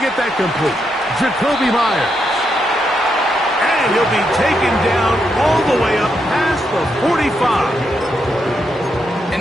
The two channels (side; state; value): both; normal; correlation 0.81